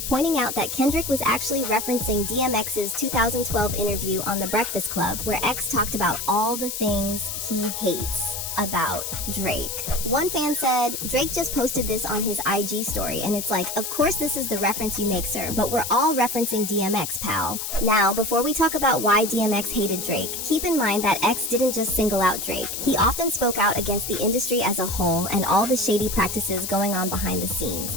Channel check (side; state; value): left; noise; hiss, 5 dB below the sound